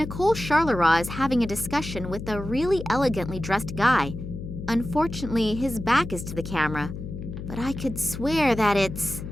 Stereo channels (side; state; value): left; noise; hum, 8 dB below the sound